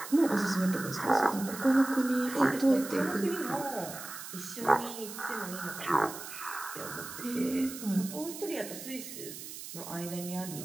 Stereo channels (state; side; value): noise; right; hiss, 11 dB below the sound